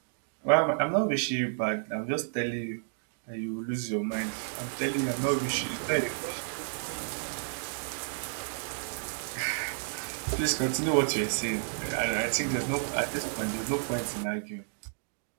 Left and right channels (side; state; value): left; silent; digital silence